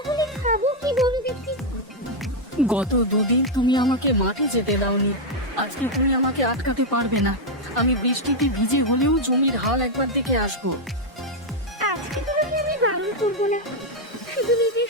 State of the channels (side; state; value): both; normal; correlation 0.00